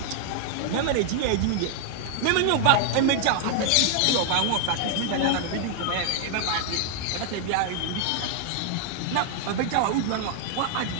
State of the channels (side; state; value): both; different; correlation 0.00